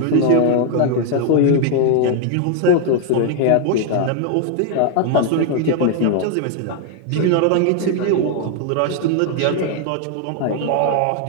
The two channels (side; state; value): both; different; correlation 0.00